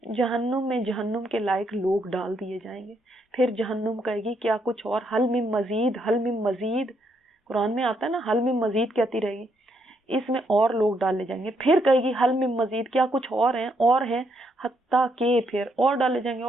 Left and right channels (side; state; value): both; normal; correlation 0.76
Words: جہنم میں جہنم کے لائق لوگ ڈال دیے جائیں گے، پھر جہنم کہے گی کیا کچھ اور، حل من مزید، حل من مزید، قرآن میں آتا ہے نا حل من مزید کہتی رہے گی، اس میں اور لوگ ڈالے جائیں گے، پھر کہے گی حل من مزید، کیا کچھ اور ہیں، حتیٰ کہ پھر اور ڈالے جائیں گے،